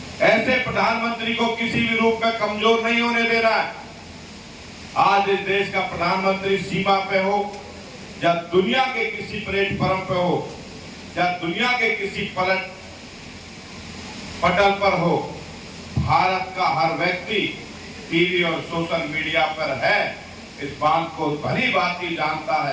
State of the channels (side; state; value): both; identical; correlation 1.00